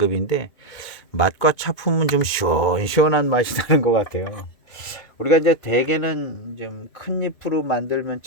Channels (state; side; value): late; right; 2.7 ms